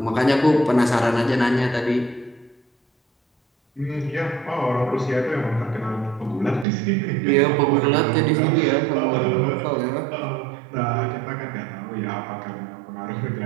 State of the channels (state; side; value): drops out; left; at 6.7 s